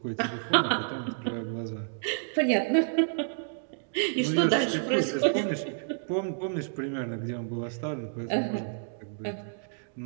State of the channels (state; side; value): silent; left; digital silence